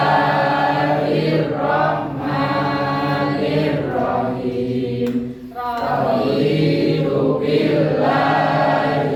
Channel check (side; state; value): both; identical; correlation 1.00